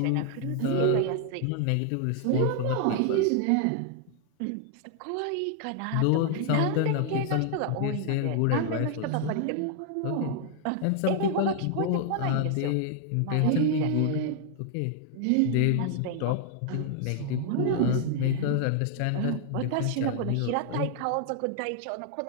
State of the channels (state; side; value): different; both; correlation 0.00